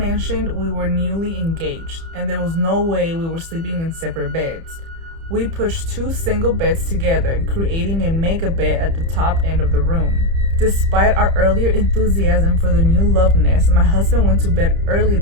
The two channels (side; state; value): left; late; 30 ms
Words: we were newly engaged, and there was no way we were sleeping in separate beds. We pushed 2 single beds together, creating a mega bed at the top end of the room. Despite our earlier enthusiasm for the new love nest, my husband went to bed early